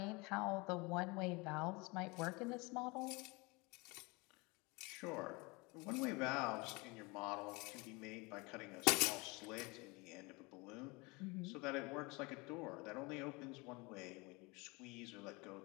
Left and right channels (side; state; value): right; quieter; 26.3 dB